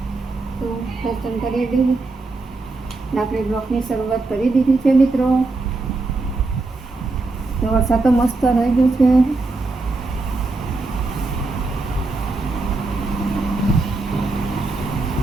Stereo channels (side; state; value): left; quieter; 3.4 dB